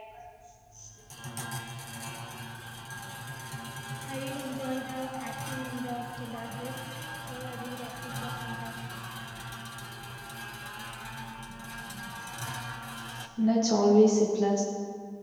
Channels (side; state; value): both; identical; correlation 1.00